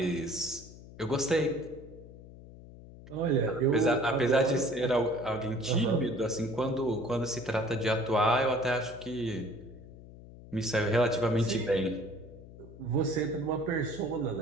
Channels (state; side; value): noise; left; hum, 17 dB below the sound